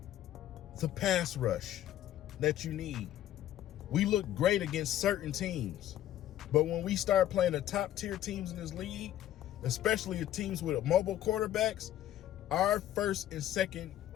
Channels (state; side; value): quieter; right; 12.5 dB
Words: the pass rush that you need? We look great against certain teams, but when we start playing the top tier teams in this league, especially the teams with mobile quarterbacks, our first and second